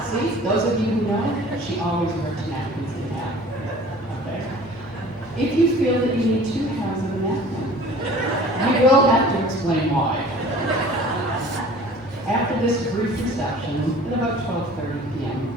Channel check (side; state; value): left; noise; hum, 23 dB below the sound